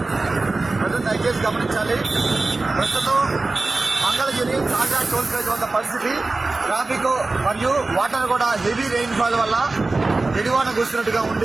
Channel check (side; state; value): left; quieter; 3.4 dB